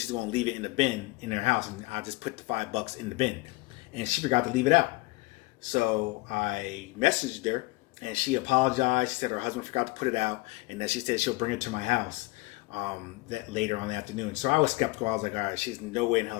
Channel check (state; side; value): quieter; right; 22.8 dB